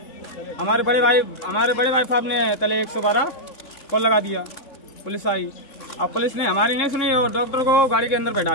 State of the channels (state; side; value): late; right; 3.6 ms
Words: हमारे बड़े भाई साहब ने तले 112 कॉल लगा दिया। पुलिस आई, अब पुलिस ने हमारी नहीं सुनी और डॉक्टर को गाड़ी के अंदर बैठा